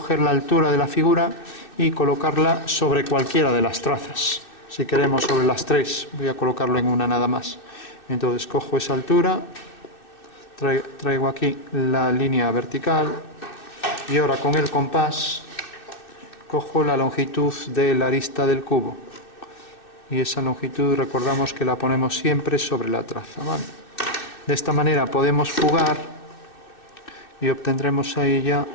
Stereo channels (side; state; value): right; late; 2.6 ms